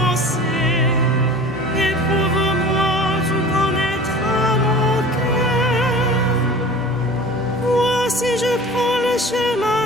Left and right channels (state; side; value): normal; both; correlation 0.40